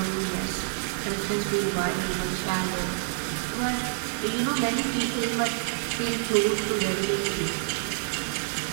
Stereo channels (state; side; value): silent; left; digital silence